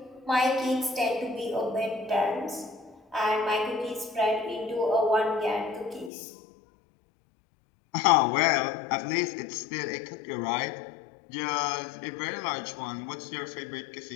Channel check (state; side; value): drops out; right; at 6.1 s